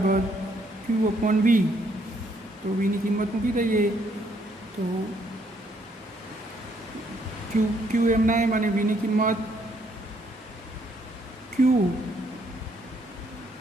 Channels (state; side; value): normal; both; correlation 0.69